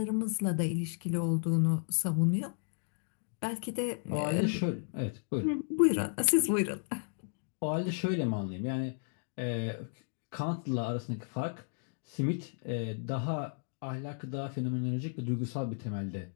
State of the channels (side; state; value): right; silent; digital silence